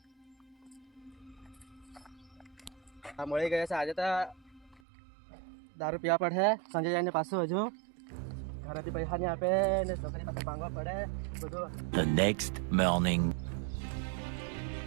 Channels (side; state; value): left; drops out; at 4.8 s